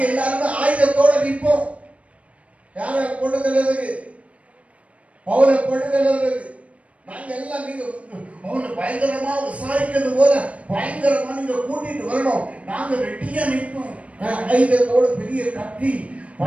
எல்லாரும் ஆயுதத்தோட நிற்போம். யாரை கொண்டு செல்றதுக்கு? பவுலை கொண்டு செல்றதுக்கு. நாங்க எல்லாம் நீங்க அவனை பயங்கரமா விசாரிக்கிறது போல பயங்கரமா நீங்க கூட்டிட்டு வரணும். நாங்க ரெட்டியா நிற்போம். ஆயுதத்தோட பெரிய கத்தி,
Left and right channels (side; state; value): left; late; 0.065 ms